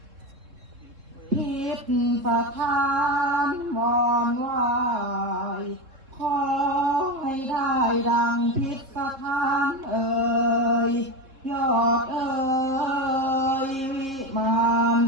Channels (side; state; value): left; late; 3.7 ms